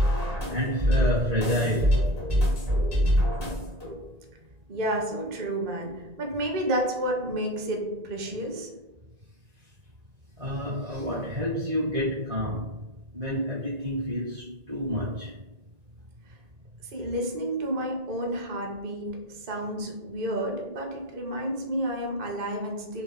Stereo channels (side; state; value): left; late; 1.9 ms